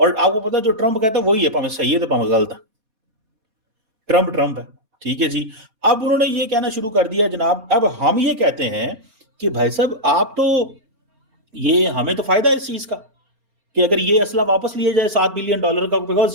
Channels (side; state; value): left; late; 4.2 ms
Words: आपको पता है जो ट्रम्प कहता है वही है, भाਵੇਂ सही है तो भाਵੇਂ गलत है, ट्रम्प है, ठीक है जी। अब उन्होंने ये कहना शुरू कर दिया जनाब, अब हम ये कहते हैं कि भाई साहब आप तो, ये हमें तो फायदा है इस चीज का कि अगर ये असला वापस लिया जाए $7 बिलियन का,